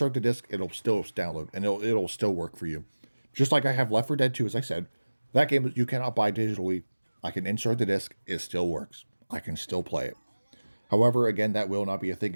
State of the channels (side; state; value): both; inverted; correlation -1.00